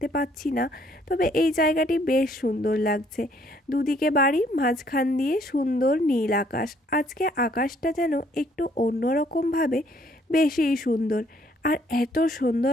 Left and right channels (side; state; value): both; normal; correlation 0.65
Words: পাচ্ছি না। তবে এই জায়গাটি বেশ সুন্দর লাগছে, দুদিকে বাড়ি, মাঝখান দিয়ে সুন্দর নীল আকাশ। আজকে আকাশটা যেন একটু অন্যরকমভাবে বেশিই সুন্দর, আর এত